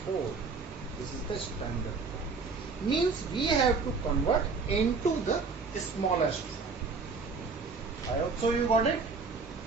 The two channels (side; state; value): left; quieter; 4.5 dB